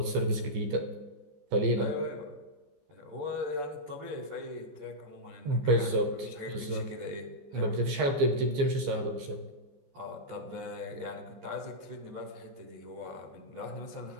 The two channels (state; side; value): late; left; 15 ms